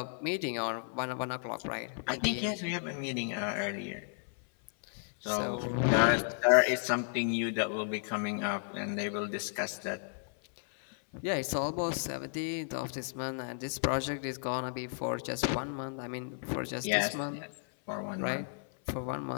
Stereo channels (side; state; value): right; silent; 55 dB below the other